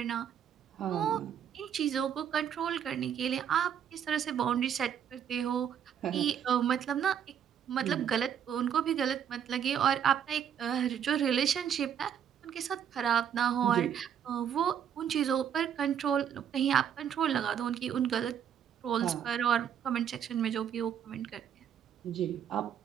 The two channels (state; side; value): quieter; left; 8.8 dB